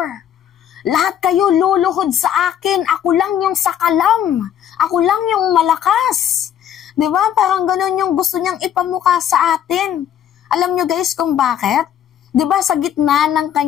Lahat kayo luluhod sa akin, ako lang yung sakalam, ako lang yung malakas. Diba? Parang ganun yung gusto niyang ipamukha sa atin. Alam nyo guys kung bakit? Diba sa gitna ng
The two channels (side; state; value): right; quieter; 9.8 dB